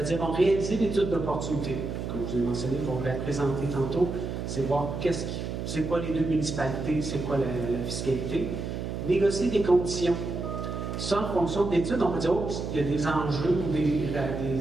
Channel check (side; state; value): right; noise; hum, 5 dB below the sound